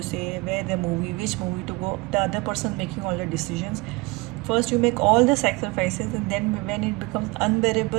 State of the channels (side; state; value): left; quieter; 24.9 dB